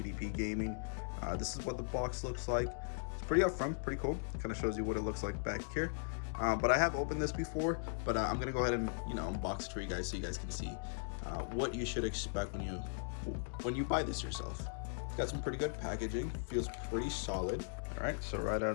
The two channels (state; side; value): silent; right; digital silence